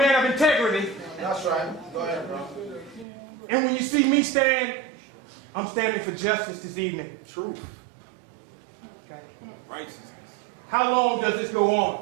of integrity. That's right. Go ahead, bro. And when you see me stand, I'm standing for justice this evening. Truth. Okay. Righteousness. How long does this go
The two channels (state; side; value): drops out; left; at 3.1 s